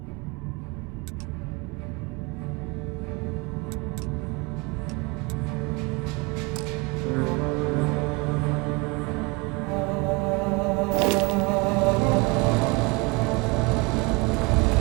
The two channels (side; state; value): left; quieter; 27.4 dB